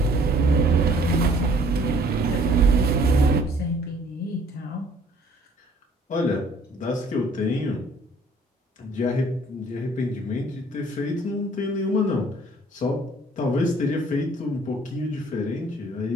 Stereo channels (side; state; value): both; normal; correlation 0.58